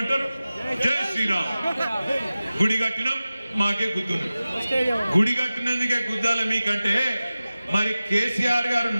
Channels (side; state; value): both; inverted; correlation -0.96